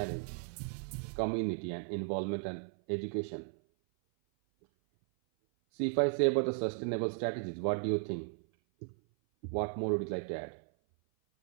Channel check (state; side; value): silent; left; 54 dB below the other